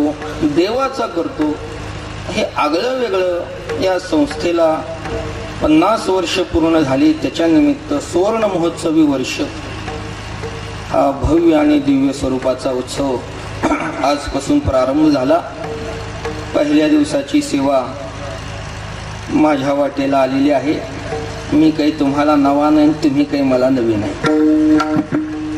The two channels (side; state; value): both; identical; correlation 1.00